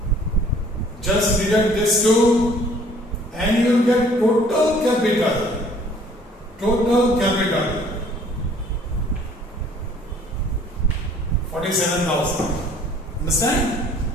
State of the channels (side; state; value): both; normal; correlation 0.56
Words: Just deduct this two and you will get total capital. Total capital 47,000. Understand?